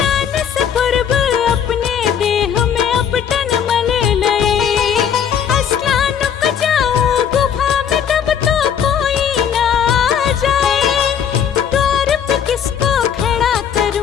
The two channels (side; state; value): right; quieter; 8.3 dB